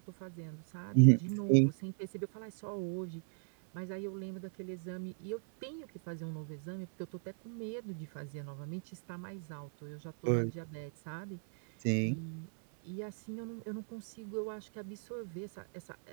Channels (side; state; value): left; silent; 53 dB below the other